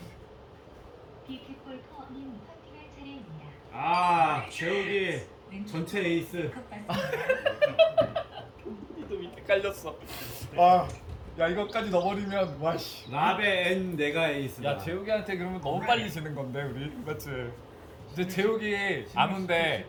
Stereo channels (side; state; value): both; identical; correlation 1.00